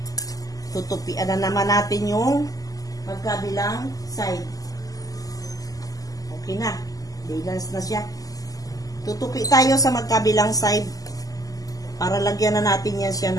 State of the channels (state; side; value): late; right; 0.17 ms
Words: Tutupian na naman natin yung magkabilang side. Okay na. Balance na siya. Tutupi tayo sa magkabilang side para lagyan na natin yan siya